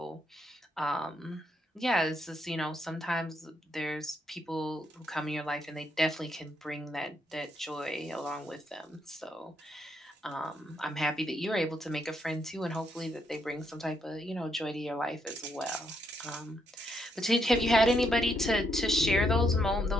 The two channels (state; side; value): normal; both; correlation 0.76